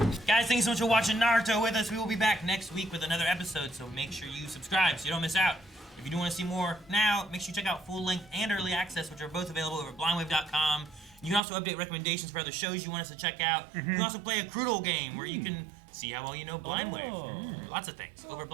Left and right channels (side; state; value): left; drops out; at 11.4 s